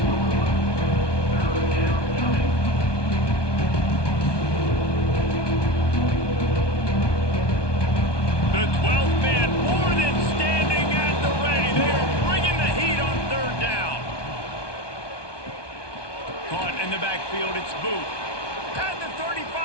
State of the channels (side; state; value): right; late; 1.2 ms